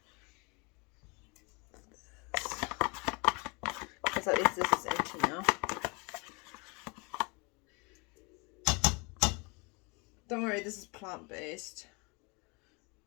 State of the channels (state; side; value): quieter; right; 29.8 dB